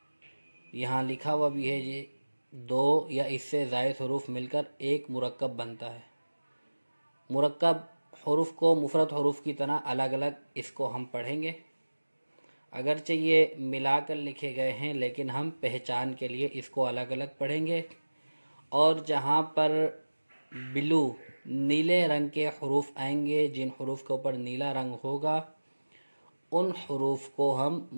یہاں لکھا ہوا بھی ہے یہ 2 یا اس سے زائد حروف مل کر ایک مرکب بنتا ہے۔ مرکب حروف کو مفرد حروف کی طرح الگ الگ اس کو ہم پڑھیں گے، اگرچہ یہ ملا کر لکھے گئے ہیں لیکن ہم پہچان کے لیے اس کو الگ الگ پڑھیں گے، اور جہاں پر بلو نیلے رنگ کے حروف آئیں گے، جن حروف کے اوپر نیلا رنگ ہوگا، ان حروف کو ہم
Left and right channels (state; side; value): inverted; both; correlation -1.00